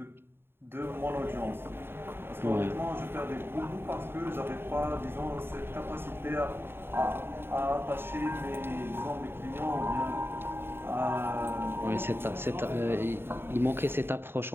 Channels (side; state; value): left; late; 0.11 ms